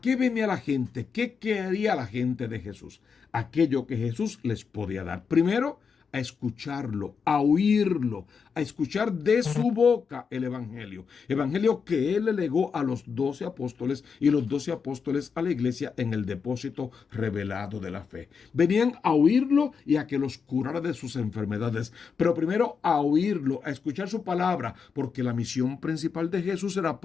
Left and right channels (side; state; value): right; quieter; 5.9 dB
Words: venía la gente? ¿Qué quería la gente de Jesús? Aquello que Jesús les podía dar. Primero, a escucharlo, a oírlo, a escuchar de su boca el evangelio. Evangelio que él le legó a los 12 apóstoles y los 12 apóstoles a la iglesia en el depósito revelado de la fe. Venían a oírlo y a que los curara de sus enfermedades. Pero primero a oírlo, a escuchar su palabra, porque la misión principal de Jesús era